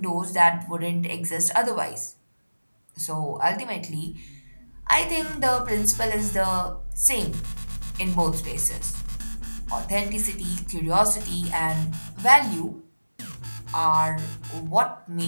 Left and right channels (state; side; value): inverted; both; correlation -1.00